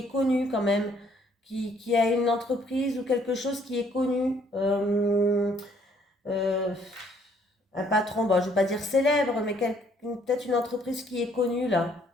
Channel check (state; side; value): normal; both; correlation 0.64